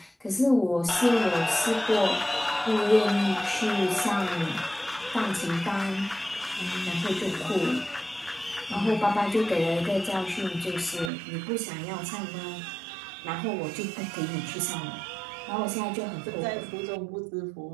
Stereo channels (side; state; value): left; drops out; at 11.1 s